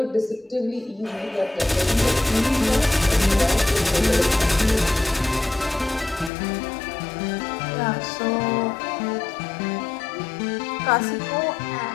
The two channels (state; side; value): drops out; right; at 6.3 s